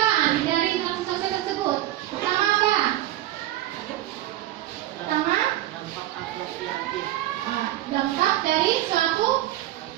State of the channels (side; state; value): left; quieter; 14.4 dB